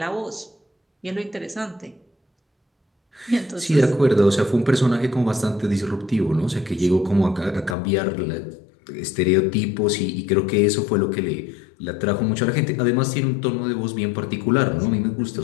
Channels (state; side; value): drops out; right; at 7.8 s